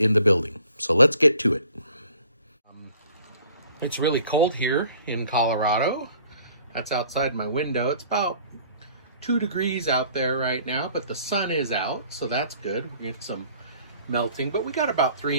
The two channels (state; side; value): inverted; both; correlation -0.54